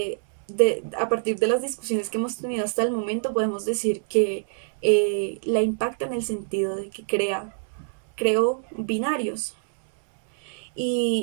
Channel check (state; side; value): silent; left; 62 dB below the other